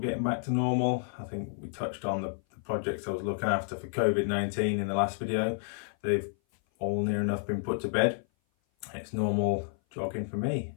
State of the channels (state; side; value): silent; right; 56 dB below the other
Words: getting back to normal. I think we touched on the projects I was looking after for COVID-19 in the last video. They've all near enough been put to bed. It's normal jogging for me.